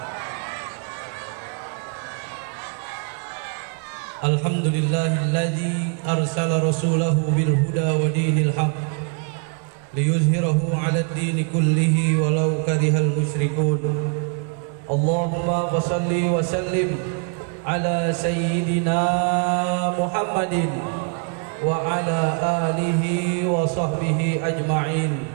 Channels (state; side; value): quieter; left; 38.0 dB